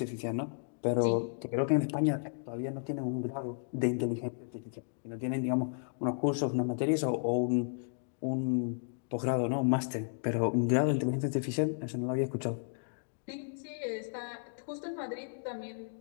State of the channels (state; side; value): silent; right; digital silence